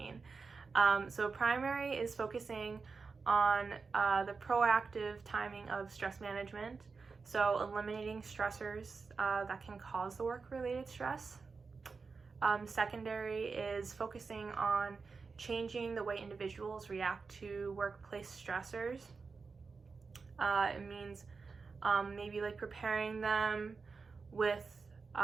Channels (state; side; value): quieter; left; 4.7 dB